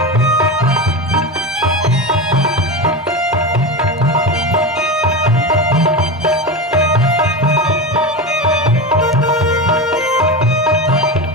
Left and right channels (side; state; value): both; normal; correlation 0.21